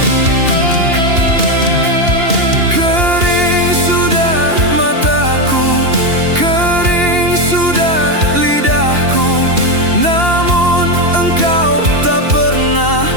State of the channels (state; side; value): late; left; 2.8 ms